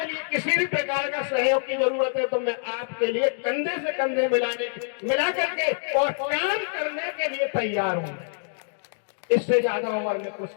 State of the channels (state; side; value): silent; right; digital silence